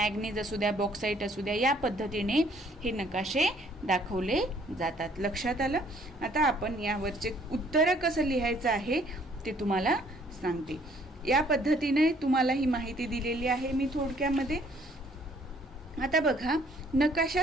असू द्या, बॉक्साईट असू द्या, या पद्धतीने हे नकाशे दाखवले जातात. लक्षात आलं. आता आपण यावरचे उत्तर कसं लिहायचं आहे ते तुम्हाला सांगते. या पद्धतीने तुम्हाला ही माहिती दिलेली आहे मी थोडक्यामध्ये. आता बघा,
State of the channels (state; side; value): normal; both; correlation 0.62